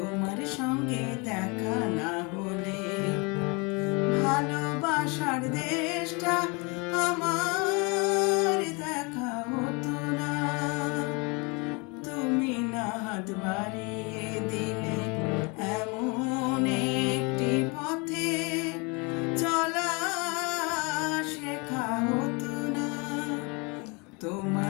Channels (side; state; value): right; quieter; 29.9 dB